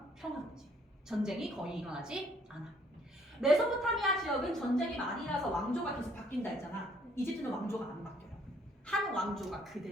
평화롭지. 전쟁이 거의 일어나지 않아. 메소포타미아 지역은 전쟁이 많이 일어나서 왕조가 계속 바뀐다 했잖아. 이집트는 왕조가 안 바뀌어요. 한 왕조가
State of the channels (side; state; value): both; normal; correlation 0.64